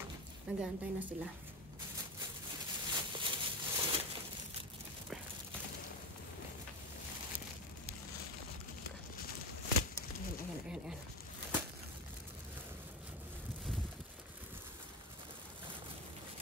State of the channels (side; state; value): both; normal; correlation 0.18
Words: Nag-aantay na sila. Ayan.